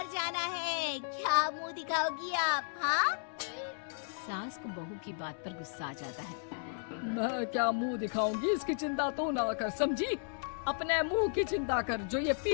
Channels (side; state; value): right; silent; digital silence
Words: जाना है, क्या मुंह दिखाओगी आप? हाँ? सास को बहू की बात पर गुस्सा आ जाता है। मैं क्या मुंह दिखाऊंगी, इसकी चिंता तो ना कर, समझी? अपने मुंह की चिंता कर, जो ये